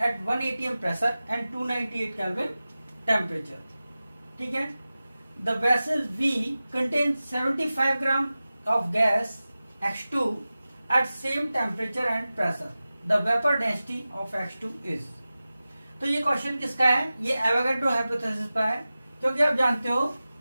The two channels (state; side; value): inverted; both; correlation -0.96